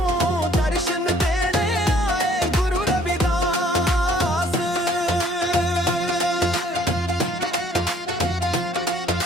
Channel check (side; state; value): both; normal; correlation 0.59